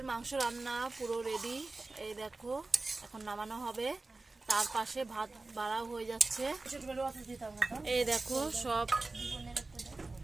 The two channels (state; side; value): quieter; left; 3.4 dB